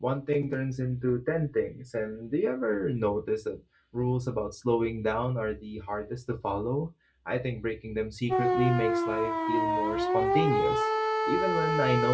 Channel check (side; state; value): both; identical; correlation 1.00